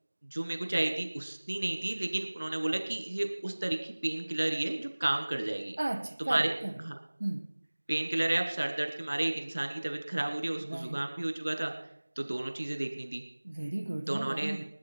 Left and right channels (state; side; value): inverted; both; correlation -1.00